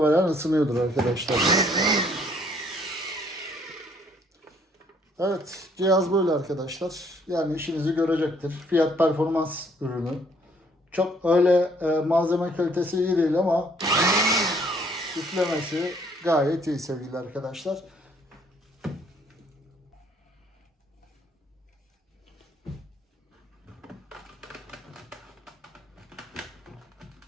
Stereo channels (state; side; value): normal; both; correlation 0.64